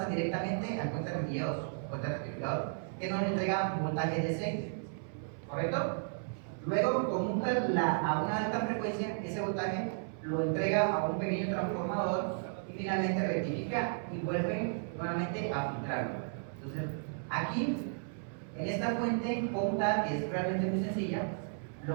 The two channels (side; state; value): left; silent; 55 dB below the other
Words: directamente al puente rectificador, que nos entrega un voltaje DC, ¿correcto? Luego conmuta a una alta frecuencia, ese voltaje lo entrega a un pequeño transformador y finalmente rectifica y vuelve nuevamente a filtrarlo. Entonces, aquí, en esta fuente conmutada, que es realmente muy sencilla,